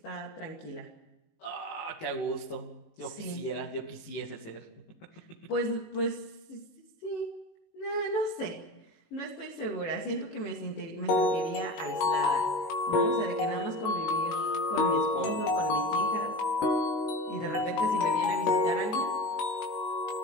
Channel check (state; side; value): late; right; 19 ms